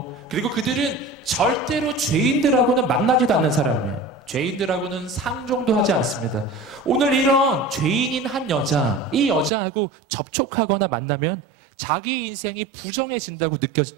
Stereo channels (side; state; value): left; drops out; at 9.5 s